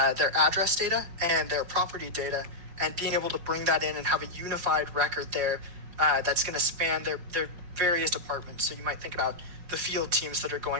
their address data and their property data, and being able to bring that in and have a unified record there that's going to span their various departments. So you might think about the field teams that are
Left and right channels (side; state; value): left; late; 5.5 ms